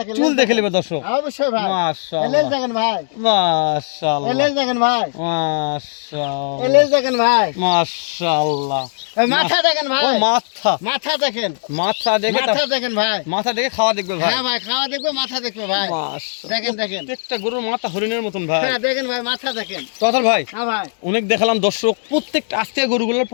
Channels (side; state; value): right; silent; 67 dB below the other